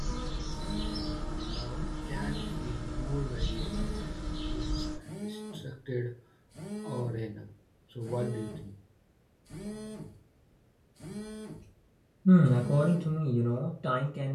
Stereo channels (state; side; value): identical; both; correlation 1.00